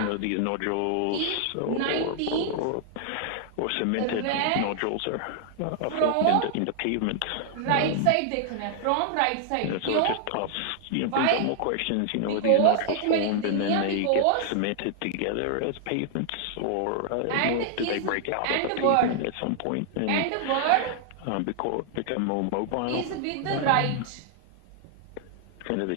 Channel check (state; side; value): different; both; correlation 0.00